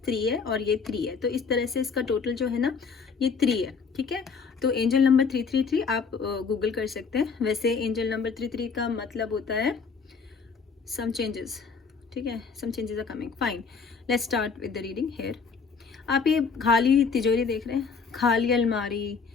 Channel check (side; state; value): right; quieter; 5.3 dB